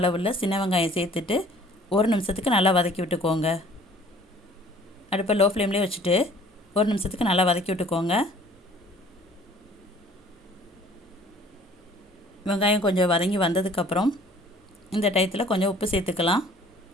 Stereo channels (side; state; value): both; normal; correlation 0.53